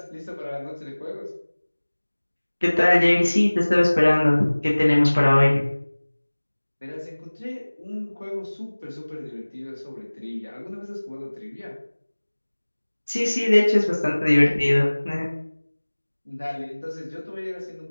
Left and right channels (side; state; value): both; inverted; correlation -1.00